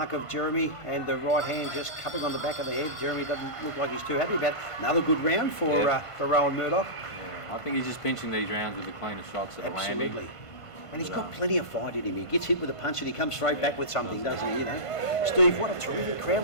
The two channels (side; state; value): right; late; 1.5 ms